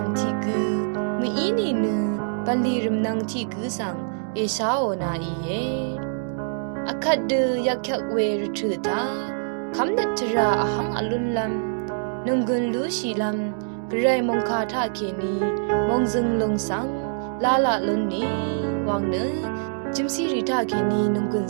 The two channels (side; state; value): left; silent; digital silence